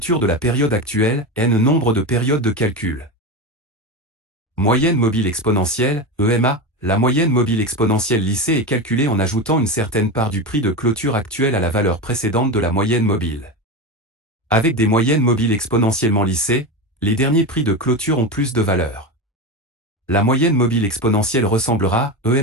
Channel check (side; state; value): both; normal; correlation 0.19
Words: de la période actuelle, N nombre de périodes de calcul. Moyenne mobile exponentielle, EMA, la moyenne mobile exponentielle lissée est calculée en ajoutant une certaine part du prix de clôture actuel à la valeur précédente de la moyenne mobile. Avec des moyennes mobiles exponentiellement lissées, les derniers prix de clôture ont plus de valeur. La moyenne mobile exponentielle ressemblera,